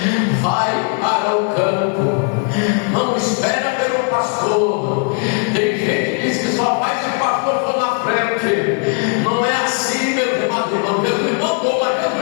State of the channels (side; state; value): right; quieter; 39.3 dB